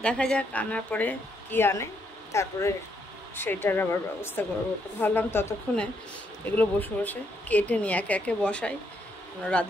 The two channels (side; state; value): both; normal; correlation 0.75